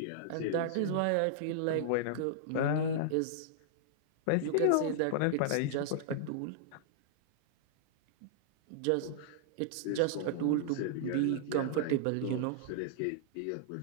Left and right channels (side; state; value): both; different; correlation -0.01